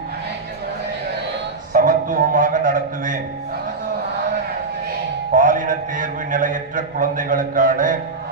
சமத்துவமாக நடத்துவேன். பாலின தேர்வு நிலையற்ற குழந்தைகளுக்கான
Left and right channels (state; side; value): quieter; left; 3.8 dB